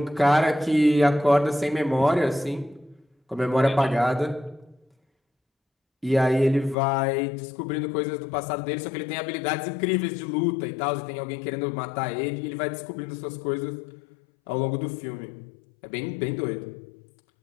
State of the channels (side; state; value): right; drops out; at 6.8 s